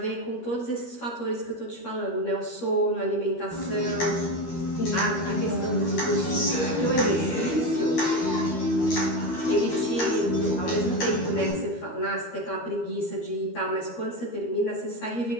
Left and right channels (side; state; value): right; late; 12 ms